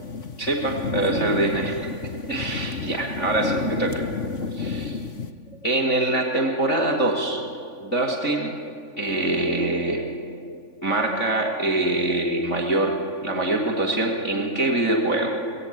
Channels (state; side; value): late; right; 3.5 ms